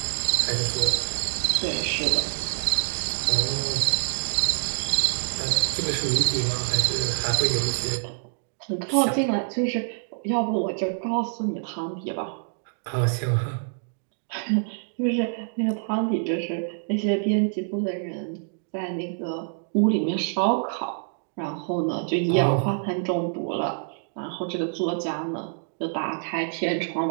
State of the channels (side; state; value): left; silent; digital silence